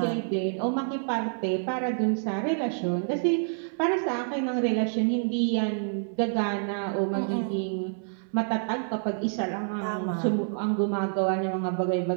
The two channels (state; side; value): silent; left; 60 dB below the other